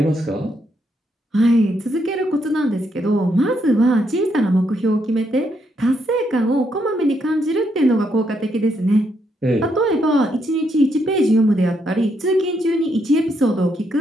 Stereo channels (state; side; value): normal; both; correlation 0.77